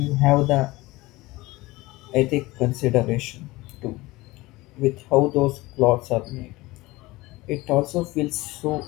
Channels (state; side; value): quieter; right; 20.4 dB